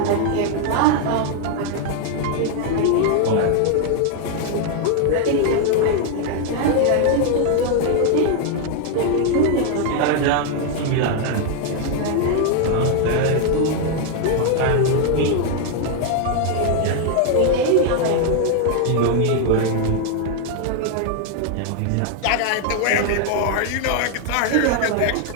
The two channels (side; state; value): both; different; correlation 0.00